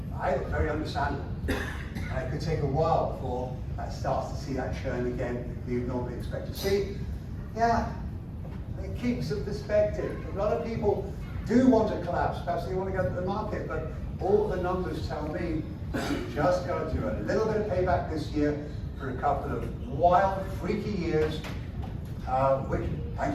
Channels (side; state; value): both; identical; correlation 1.00